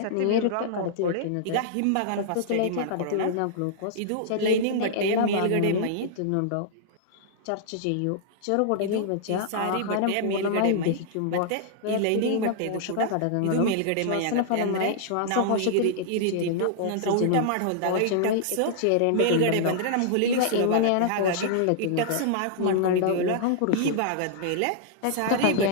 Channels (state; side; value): different; both; correlation -0.02